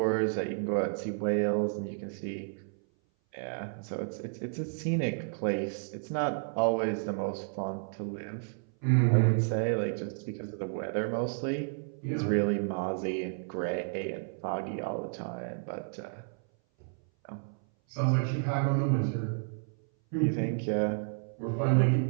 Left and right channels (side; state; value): left; silent; 57 dB below the other